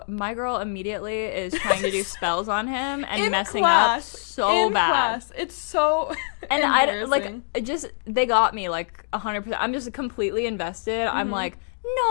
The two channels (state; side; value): silent; right; digital silence